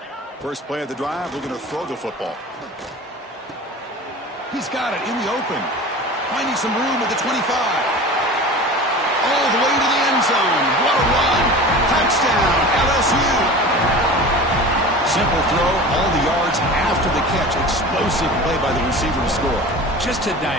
First play of the drive, we're going to throw the football. He's got it in the open. Finding some room at the 25. All the way to the end zone. What a run. Touchdown, LSU. Simple throw, all the yards after the catch. Explosive play by the receiver to score. Just a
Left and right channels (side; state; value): both; normal; correlation 0.36